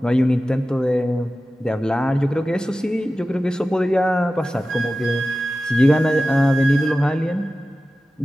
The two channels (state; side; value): normal; both; correlation 0.95